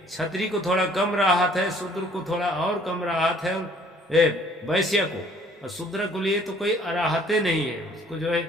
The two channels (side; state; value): both; normal; correlation 0.58